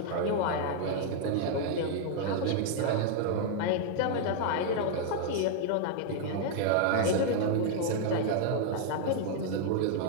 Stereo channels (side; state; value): both; different; correlation 0.00